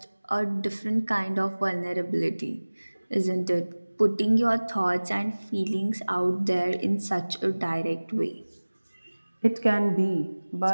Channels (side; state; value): both; inverted; correlation -1.00